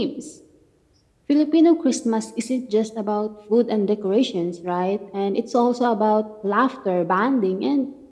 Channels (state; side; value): identical; both; correlation 1.00